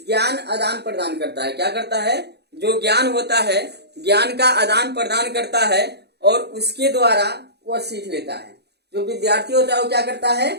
ज्ञान आदान प्रदान करता है। क्या करता है, जो ज्ञान होता है ज्ञान का आदान प्रदान करता है, और उसके द्वारा वह सीख लेता है। जो विद्यार्थी होता है वो क्या करता है,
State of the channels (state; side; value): late; left; 0.48 ms